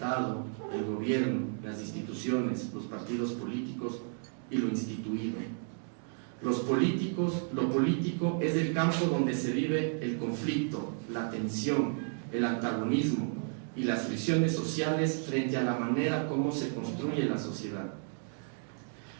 el gobierno, las instituciones, los partidos políticos y lo instituido. Lo político es el campo donde se vive el conflicto, la tensión, el antagonismo y las fricciones sociales frente a la manera como se construye la sociedad.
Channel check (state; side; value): silent; left; 56 dB below the other